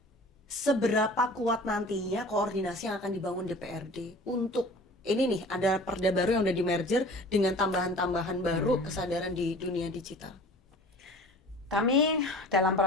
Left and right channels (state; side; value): normal; both; correlation 0.43